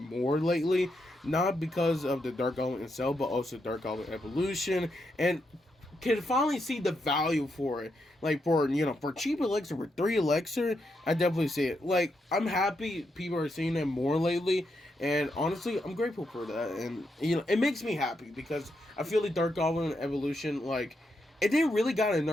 lately, not because of the Dark Goblin itself, but also Dark Goblin Evolution, and can finally see the value for it. Like for, for cheap elixir, for 3 elixir, I definitely see it. Like, I'm happy people are seeing it more lately, and honestly, I'm grateful for that. And, it makes me happy because I feel like Dark Goblin Evolution, like, it didn't really got a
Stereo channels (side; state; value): both; normal; correlation 0.82